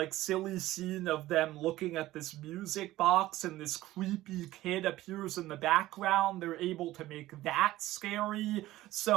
silly scene of them looking at this music box and this creepy kid appears in the background. They're able to make that scary.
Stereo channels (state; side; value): quieter; left; 16.1 dB